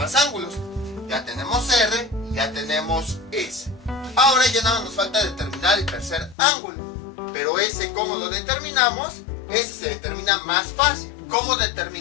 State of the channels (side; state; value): right; drops out; at 6.4 s